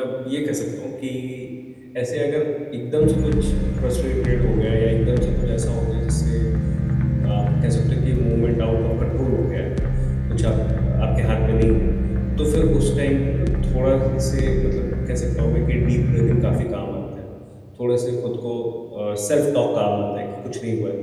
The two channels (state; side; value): identical; both; correlation 1.00